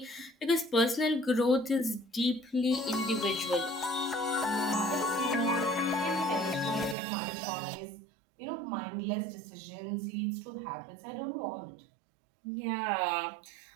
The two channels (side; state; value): left; drops out; at 7.0 s